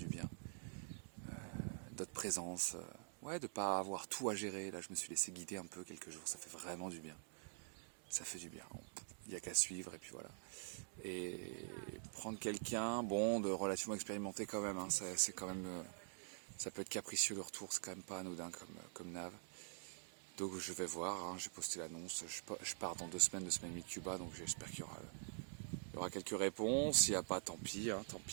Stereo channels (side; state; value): left; silent; digital silence